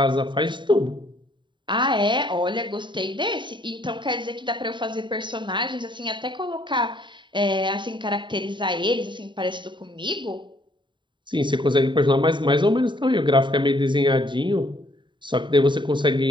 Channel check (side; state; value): left; late; 0.23 ms